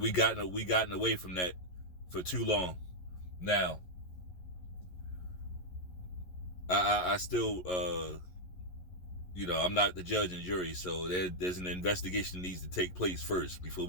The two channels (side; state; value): right; late; 11 ms